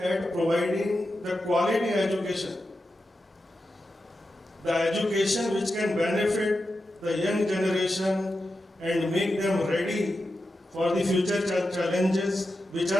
providing the quality education. The education which can benefit the young generation and make them ready for the future challenges which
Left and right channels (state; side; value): normal; both; correlation 0.90